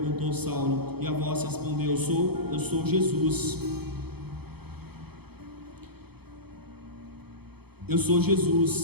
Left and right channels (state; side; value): late; left; 0.97 ms